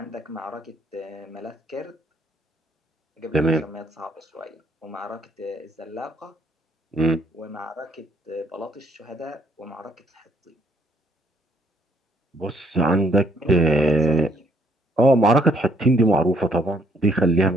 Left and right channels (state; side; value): normal; both; correlation 0.67